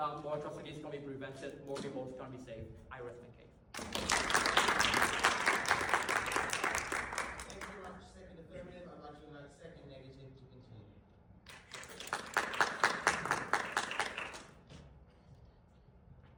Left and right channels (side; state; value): both; identical; correlation 1.00